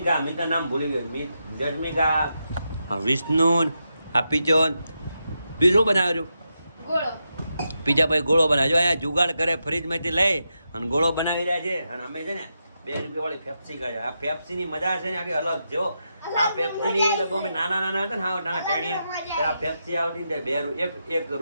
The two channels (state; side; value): inverted; both; correlation -0.86